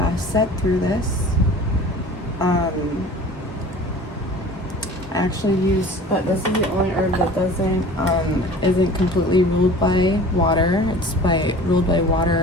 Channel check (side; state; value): both; normal; correlation 0.42